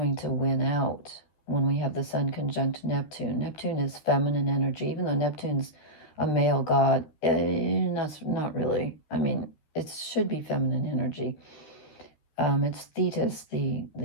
to win out. when we have the Sun conjunct Neptune. Neptune is feminine energy, even though Neptune's a male god. That's not really. I mean, it should be feminine energy. It's Thetis,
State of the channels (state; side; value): late; right; 13 ms